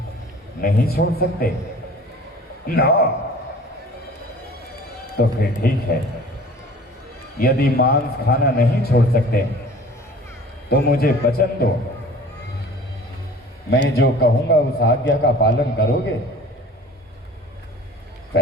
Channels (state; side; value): normal; both; correlation 0.45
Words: नहीं छोड़ सकते ना? तो फिर ठीक है, यदि मांस खाना नहीं छोड़ सकते तो मुझे वचन दो, मैं जो कहूंगा उस आज्ञा का पालन करोगे?